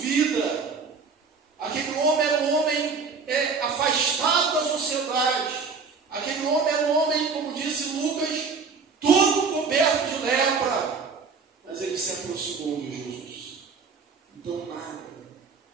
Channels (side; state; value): left; quieter; 5.0 dB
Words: Aquele homem era um homem afastado da sociedade. Aquele homem era um homem, como disse Lucas, todo coberto de lepra. Mas ele se aproximou de Jesus. Então